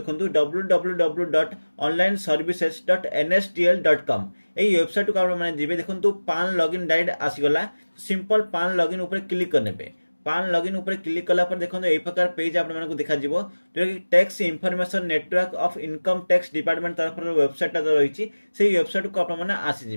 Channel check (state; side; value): inverted; both; correlation -1.00